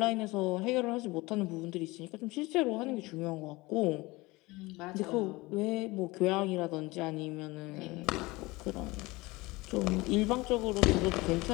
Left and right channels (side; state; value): right; quieter; 22.0 dB